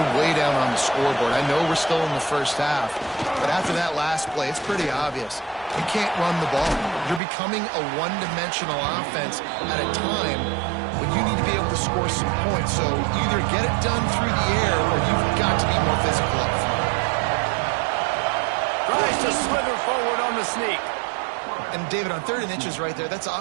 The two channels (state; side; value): drops out; left; at 7.2 s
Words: way down on the scoreboard. I know we're still in the first half, but after that last play, it's pretty obvious. You can't run the ball. You're becoming a one-dimensional offense at a time when you need to be able to score some points. So either get it done through the air or you've got to be more physical up front. Tries to slither forward on the sneak. And, David, on 3rd and inches right there, that's